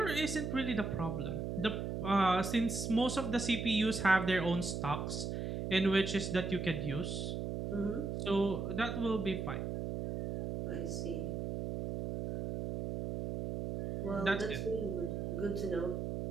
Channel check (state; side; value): noise; right; hum, 3 dB below the sound